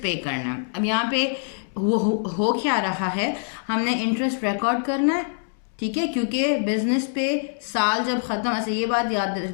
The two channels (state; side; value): silent; right; digital silence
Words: पे करना है। अब यहाँ पे हो क्या रहा है? हमने इंटरेस्ट रिकॉर्ड करना है, ठीक है, क्योंकि बिजनेस पे साल जब ख़त्म, अच्छा ये बात याद